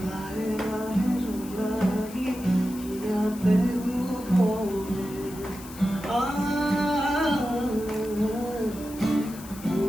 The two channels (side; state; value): left; noise; hiss, 17 dB below the sound